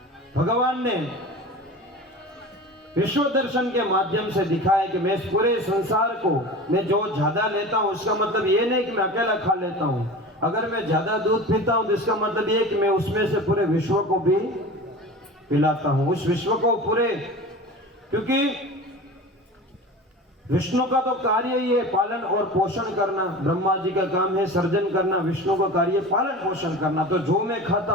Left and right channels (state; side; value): normal; both; correlation 0.34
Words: भगवान ने विश्व दर्शन के माध्यम से दिखाया कि मैं इस पूरे संसार को, मैं जो ज्यादा लेता हूं उसका मतलब ये नहीं कि मैं अकेला खा लेता हूं। अगर मैं ज्यादा दूध पीता हूं तो इसका मतलब ये कि मैं उसमें से पूरे विश्व को भी पिलाता हूं। उस विश्व को पूरे, क्योंकि विष्णु का तो कार्य ही है पालन और पोषण करना। ब्रह्मा जी का काम है सर्जन करना, विष्णु का कार्य पालन पोषण करना। तो जो मैं खाता